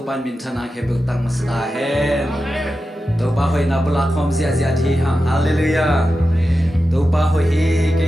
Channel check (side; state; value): both; normal; correlation 0.92